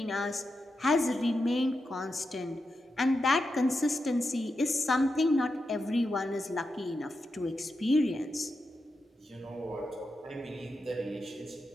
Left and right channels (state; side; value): normal; both; correlation 0.88